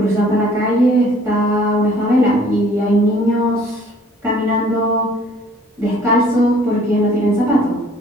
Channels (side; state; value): both; normal; correlation 0.56